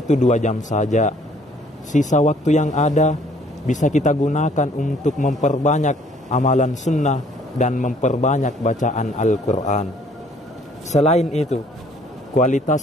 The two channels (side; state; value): both; normal; correlation 0.60